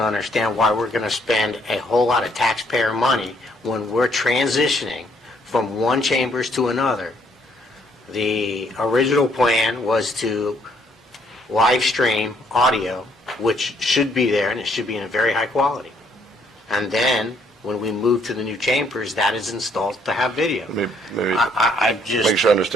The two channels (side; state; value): both; normal; correlation 0.67